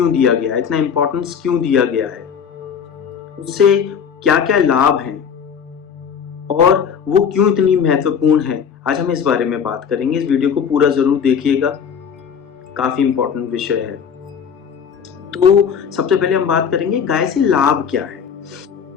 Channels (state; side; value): quieter; right; 7.2 dB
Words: दिया गया है, इतना इम्पोर्टेंस क्यों दिया गया है, उससे क्या क्या लाभ हैं और वो क्यों इतनी महत्वपूर्ण है, आज हम इस बारे में बात करेंगे। इस वीडियो को पूरा जरूर देखिएगा, काफी इम्पोर्टेंट विषय है। तो सबसे पहले हम बात करेंगे गाय से लाभ क्या है।